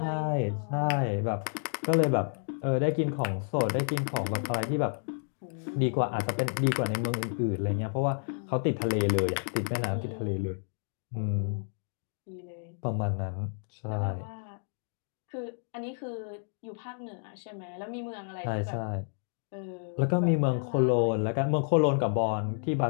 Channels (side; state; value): right; silent; digital silence